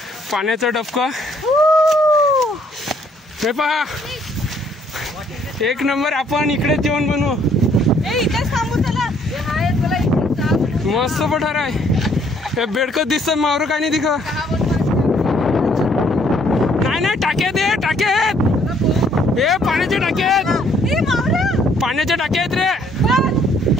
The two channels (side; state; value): both; normal; correlation 0.65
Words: पाण्याचा डबका हे पहा. एक नंबर. आपण इकडे जेवण बनवू. मस्त पठार आहे. हे बेडकं दिसतं मावर काय नाही दिख. नाही टाक्या दे टाक्यात. हे पाण्याचे टाक्यात. पाण्याच्या टाक्या आहेत रे.